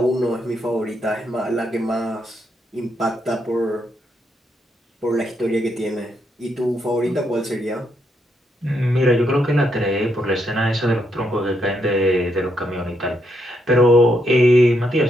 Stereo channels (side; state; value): both; normal; correlation 0.78